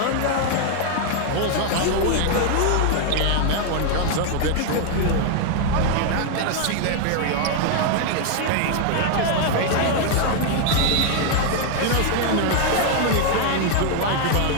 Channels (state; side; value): different; both; correlation 0.00